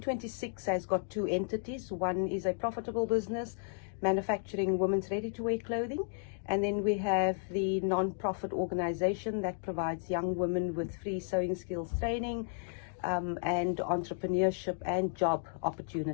has got two entities. One is a profitable business manufacturing women's ready-to-wear clothing, and then we have the non-profit organization that provides young women with free sewing skills training and entrepreneurship and job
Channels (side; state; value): right; silent; digital silence